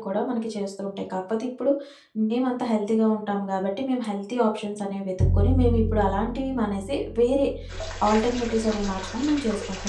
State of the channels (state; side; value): identical; both; correlation 1.00